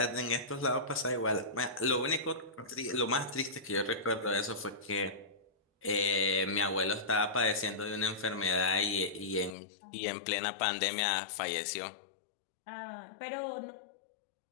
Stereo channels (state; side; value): drops out; right; at 9.6 s